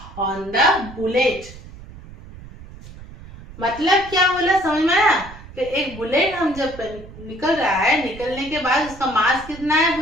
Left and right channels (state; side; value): noise; right; rumble, 17 dB below the sound